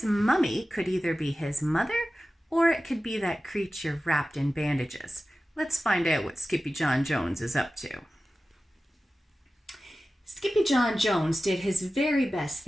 mummy could either be his mother or it could be that creature wrapped in bandages. Let's find out what Skippyjon Jones is up to. Skippyjon Jones did his very best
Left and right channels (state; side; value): normal; both; correlation 0.95